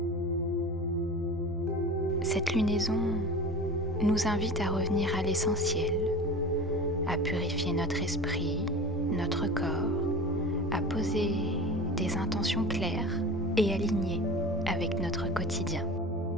Cette lunaison nous invite à revenir à l'essentiel, à purifier notre esprit, notre corps, à poser des intentions claires et alignées avec notre quotidien.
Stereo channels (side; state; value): both; normal; correlation 0.35